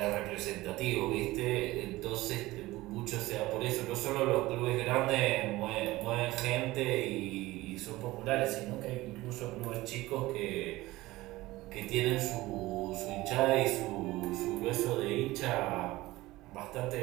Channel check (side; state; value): left; quieter; 18.6 dB